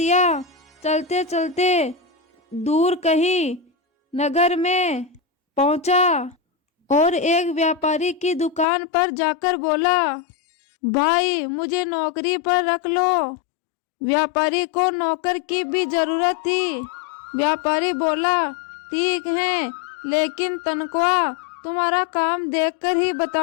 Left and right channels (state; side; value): drops out; right; at 8.7 s